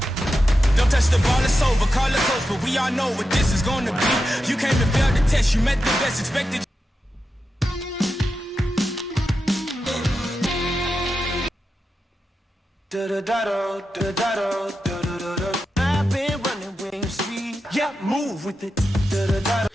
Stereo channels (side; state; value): both; normal; correlation 0.89